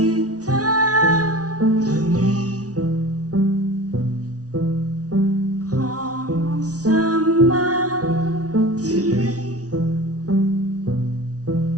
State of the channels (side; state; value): left; late; 0.68 ms